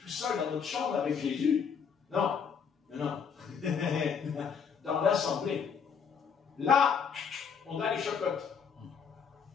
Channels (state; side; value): quieter; right; 6.6 dB